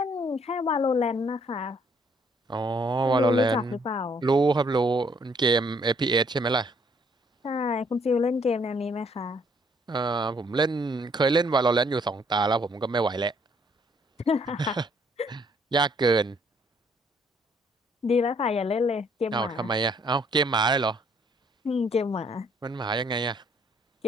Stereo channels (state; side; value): normal; both; correlation 0.65